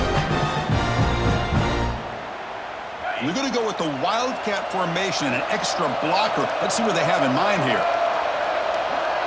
We're going to go with the Wildcat formation and an extra blocker. Let's see what they have in mind here.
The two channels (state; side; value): identical; both; correlation 1.00